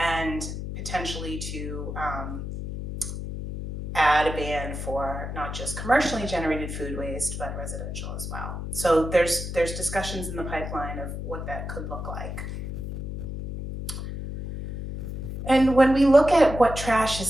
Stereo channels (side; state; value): left; noise; hum, 6 dB below the sound